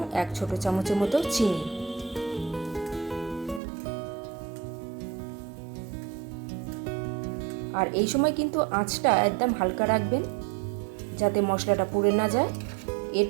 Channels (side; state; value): left; drops out; at 3.6 s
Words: 1 ছোট চামচের মতো চিনি। আর এই সময় কিন্তু আঁচটা একদম হালকা রাখবেন যাতে মশলাটা পুড়ে না যায়।